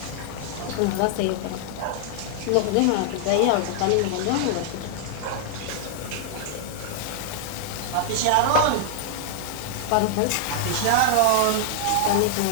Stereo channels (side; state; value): both; different; correlation -0.01